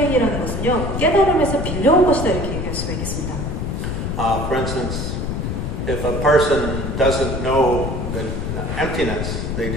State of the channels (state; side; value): noise; left; rumble, 2 dB below the sound